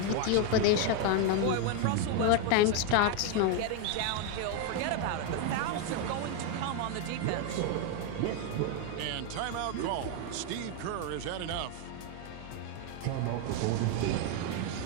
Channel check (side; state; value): both; different; correlation 0.01